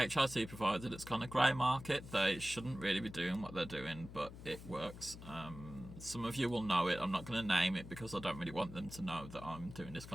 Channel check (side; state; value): left; noise; hum, 13 dB below the sound